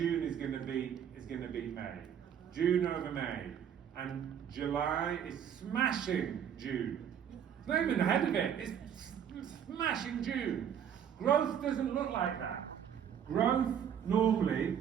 is going to beat May. June over May, and July is smashing June. It's not even ahead of it. It's smashing June. Growth doesn't look like that. Growth normally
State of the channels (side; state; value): left; quieter; 8.8 dB